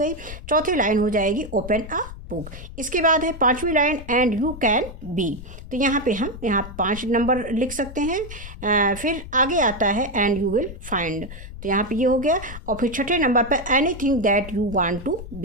चौथी लाइन हो जाएगी ओपन अ बुक। इसके बाद है पांचवी line and you can be, तो यहाँ पे हम 5 नंबर लिख सकते हैं। फिर आगे आता है एंड यू विल फाइंड, तो यहाँ पे ये हो गया। और फिर छठे नंबर पर anything that you want to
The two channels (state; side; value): noise; left; rumble, 12 dB below the sound